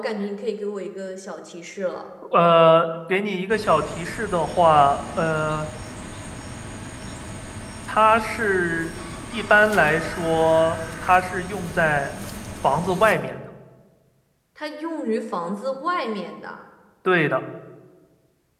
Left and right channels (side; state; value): both; identical; correlation 1.00